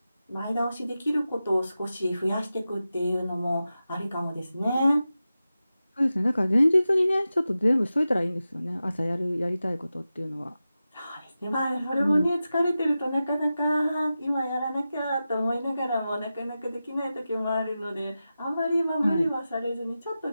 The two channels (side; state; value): both; inverted; correlation -0.93